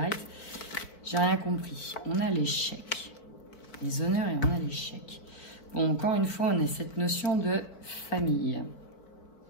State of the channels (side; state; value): right; late; 4.5 ms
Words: J'ai rien compris. On a l'échec. Les honneurs et on a l'échec. Bon, encore une fois, on a cette notion de famille.